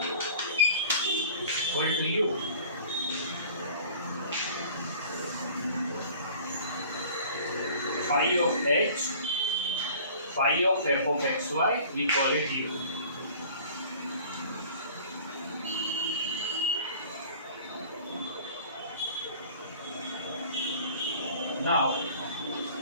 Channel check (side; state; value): both; inverted; correlation -0.46